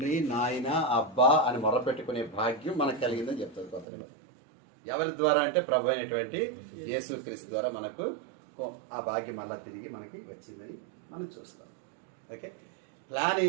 నాయన అబ్బా అని మొరపెట్టుకునే భాగ్యం మనకు కలిగిందని చెప్తుంది కొత్త నిబంధన. ఎవరి ద్వారా అంటే ప్రభు అయినటువంటి యేసుక్రీస్తు ద్వారా మనకు ఆ భాగ్యం మళ్ళా తిరిగి మనకి వచ్చిందని మనం చూస్తాం. ఓకే, ప్లాన్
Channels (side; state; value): left; drops out; at 3.9 s